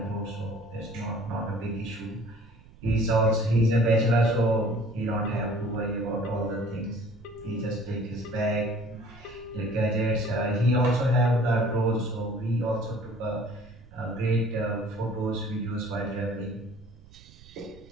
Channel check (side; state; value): right; noise; rumble, 22 dB below the sound